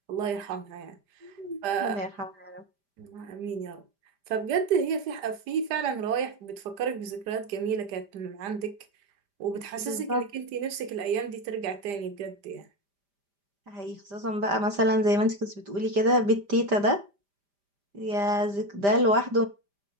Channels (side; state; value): left; late; 5.0 ms